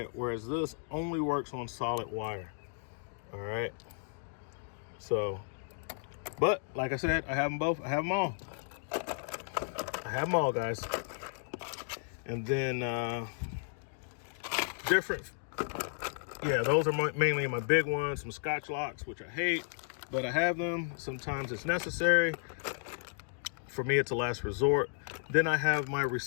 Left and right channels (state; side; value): silent; right; digital silence